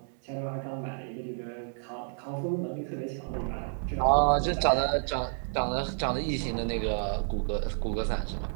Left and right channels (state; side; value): silent; left; digital silence